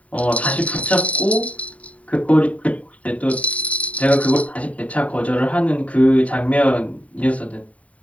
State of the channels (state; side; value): late; right; 0.067 ms